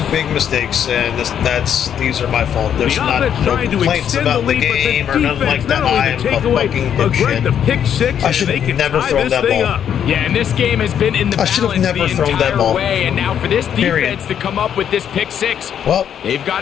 big mistakes, and these are my fault. There's no complaints about the game or nothing like that. I'm a fucking dipshit. I should have never thrown that ball. Yeah, and this game has been in the balance the entire way, and now for this defense to come up with this pick 6, well, they've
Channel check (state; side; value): quieter; right; 9.0 dB